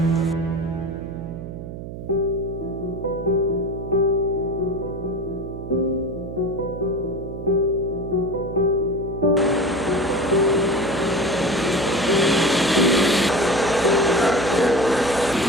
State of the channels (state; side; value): noise; right; hum, 10 dB below the sound